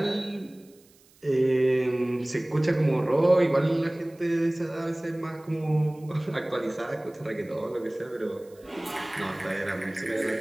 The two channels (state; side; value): noise; right; hiss, 29 dB below the sound